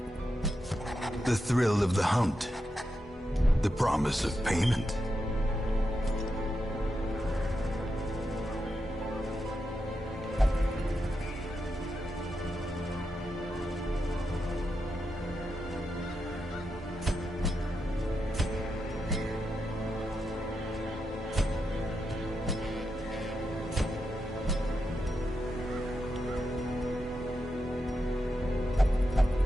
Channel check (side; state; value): both; normal; correlation 0.86